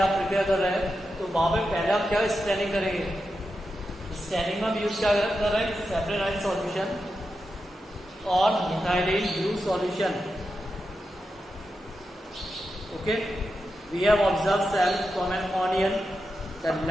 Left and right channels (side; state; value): both; normal; correlation 0.89